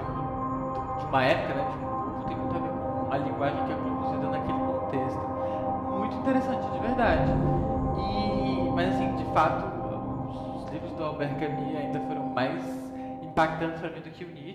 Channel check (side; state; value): both; identical; correlation 1.00